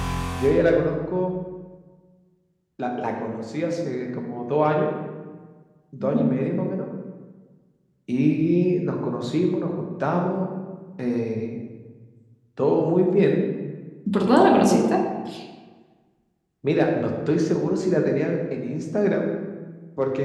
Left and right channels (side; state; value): both; identical; correlation 1.00